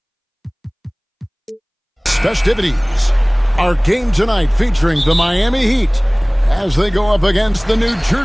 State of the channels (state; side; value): identical; both; correlation 1.00